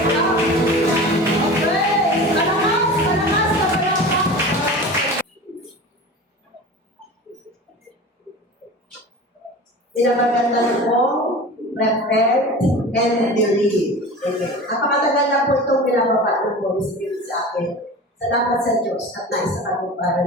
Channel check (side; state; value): both; normal; correlation 0.35